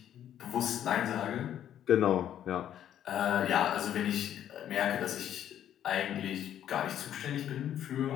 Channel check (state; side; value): quieter; right; 10.6 dB